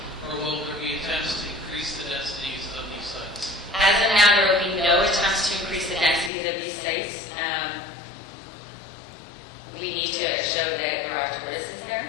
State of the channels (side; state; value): right; drops out; at 6.3 s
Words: or will there be attempts to increase the densities of these sites? As of now, there will be